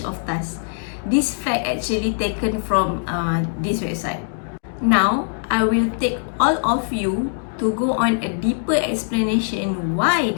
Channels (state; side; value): silent; right; digital silence